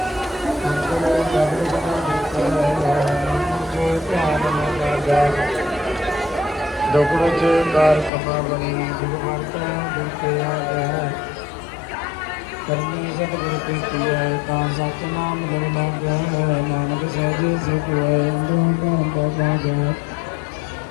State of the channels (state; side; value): drops out; right; at 8.1 s